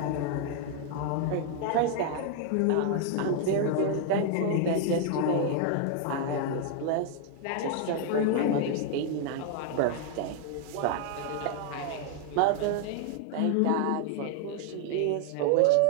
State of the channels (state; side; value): different; both; correlation 0.00